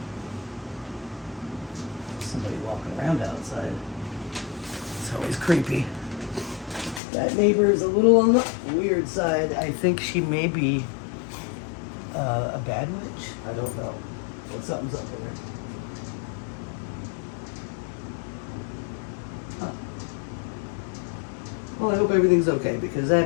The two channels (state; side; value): drops out; right; at 7.0 s